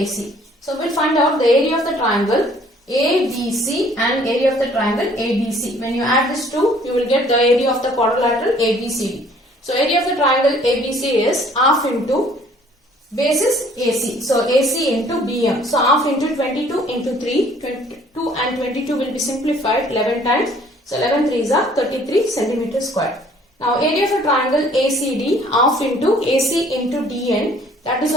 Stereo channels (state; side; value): normal; both; correlation 0.57